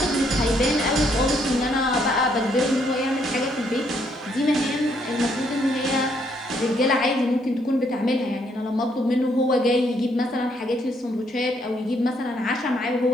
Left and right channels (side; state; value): both; normal; correlation 0.71